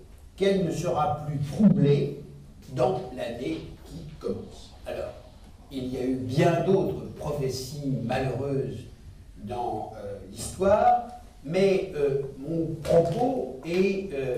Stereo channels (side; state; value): both; identical; correlation 1.00